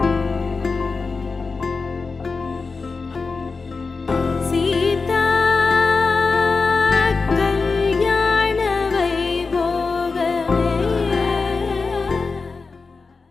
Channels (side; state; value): right; quieter; 4.4 dB